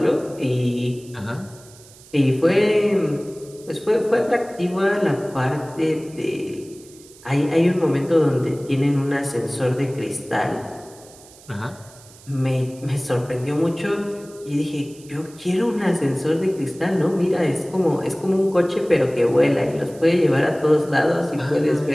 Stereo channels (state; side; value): noise; right; hiss, 23 dB below the sound